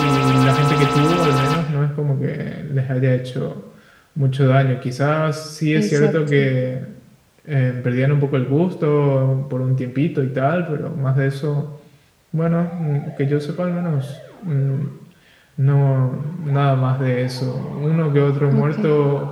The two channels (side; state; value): both; identical; correlation 1.00